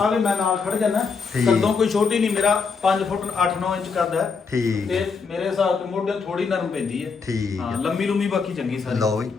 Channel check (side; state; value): right; quieter; 5.2 dB